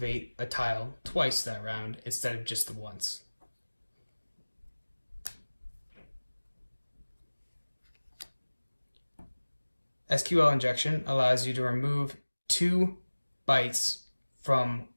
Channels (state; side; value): inverted; both; correlation -1.00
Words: a tile twice that round instead of just the once. SQL injection allows you to remove 2 bytes from